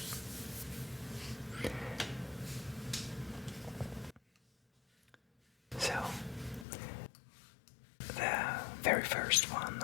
So, the very first one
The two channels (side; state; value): right; drops out; at 6.7 s